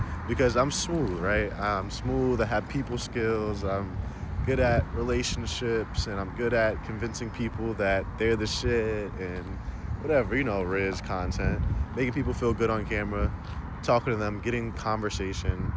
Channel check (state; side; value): identical; both; correlation 1.00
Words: because I'm smooth, right? I'm smooth. I have people skills. I'm good at relationships, and I'm good at convincing people that they're the shit and whatever, Riz content, making people feel good on camera, talking to them, getting conversation,